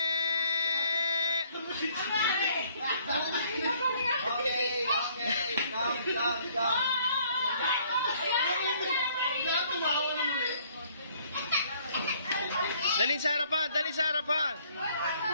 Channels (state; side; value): inverted; both; correlation -0.62